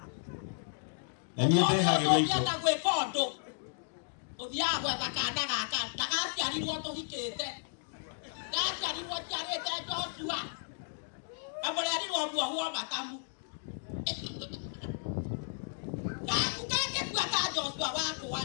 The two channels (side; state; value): right; silent; digital silence